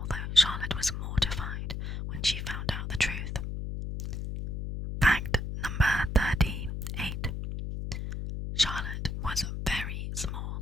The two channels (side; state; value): left; noise; hum, 4 dB below the sound